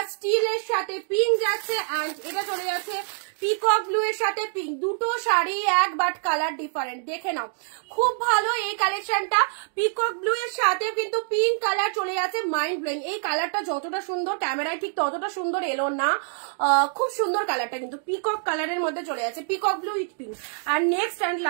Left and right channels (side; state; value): left; silent; 61 dB below the other